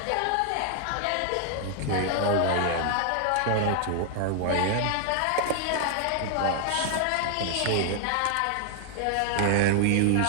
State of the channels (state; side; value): different; both; correlation 0.00